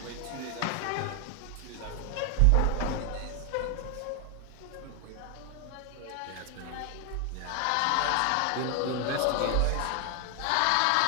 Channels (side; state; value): both; different; correlation 0.00